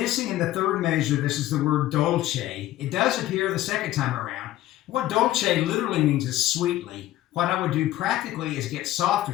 in the third measure, this is the word dolce. It does appear the second time around. What dolce literally means is sweetly. What I would do practically is get softer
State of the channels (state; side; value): quieter; right; 14.7 dB